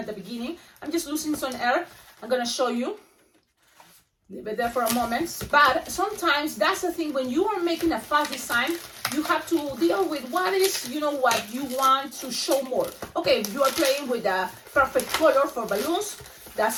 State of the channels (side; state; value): both; identical; correlation 1.00